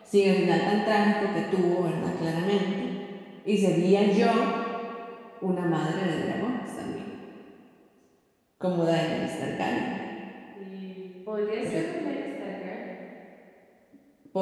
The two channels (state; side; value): identical; both; correlation 1.00